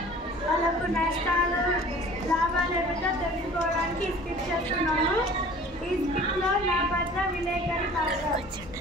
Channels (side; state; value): both; normal; correlation 0.46